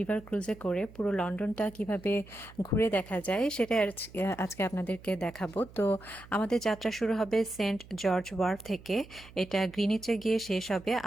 ক্রুজে করে পুরো লন্ডনটা কিভাবে ঘুরে দেখা যায় সেটা আজকে আপনাদেরকে দেখাবো। তো আমাদের যাত্রা শুরু হবে সেন্ট জর্জ ওয়ার্ফ থেকে। এটা গ্রিনিচে গিয়ে শেষ হবে,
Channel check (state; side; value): noise; right; hum, 20 dB below the sound